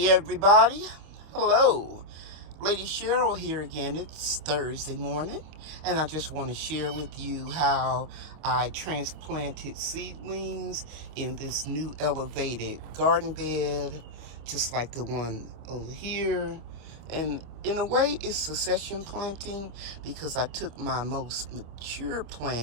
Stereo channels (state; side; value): late; left; 25 ms